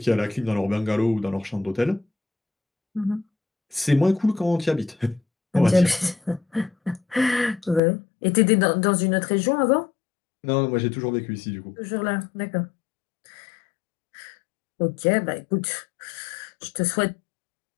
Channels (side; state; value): right; drops out; at 7.8 s